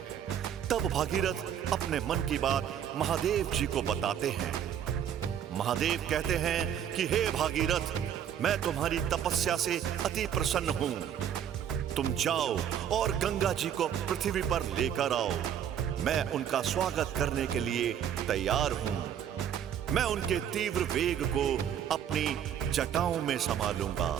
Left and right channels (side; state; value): left; quieter; 9.3 dB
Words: तब भागीरथ अपने मन की बात महादेव जी को बताते हैं। महादेव कहते हैं कि हे भागीरथ, मैं तुम्हारी तपस्या से अति प्रसन्न हूं। तुम जाओ और गंगा जी को पृथ्वी पर लेकर आओ, मैं उनका स्वागत करने के लिए तैयार हूं। मैं उनके तीव्र वेग को अपनी जटाओं में संभालूंगा।